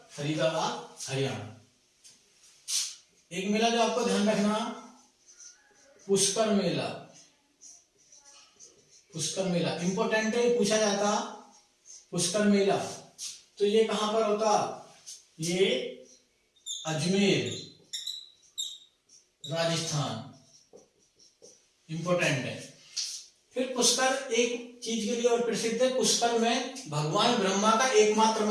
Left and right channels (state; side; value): identical; both; correlation 1.00